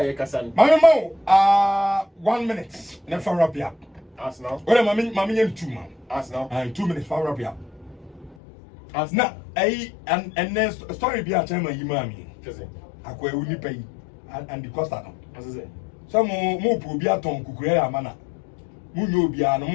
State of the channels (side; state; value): right; drops out; at 8.3 s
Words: can. Mama, 1 minute. Never wrap up. As now. Well, Mammy, 2 man. As now. 2 minutes for wrap up. As now. And then story be a time you mammy. I go only pay and the cost. As I say. Some more probia ton kukuera mana. Munyo bia no